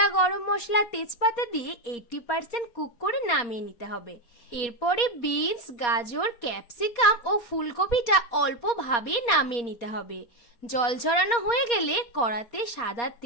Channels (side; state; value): right; late; 4.2 ms